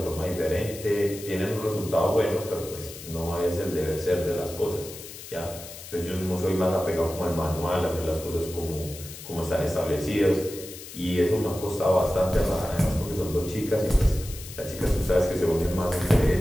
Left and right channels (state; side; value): noise; left; hiss, 13 dB below the sound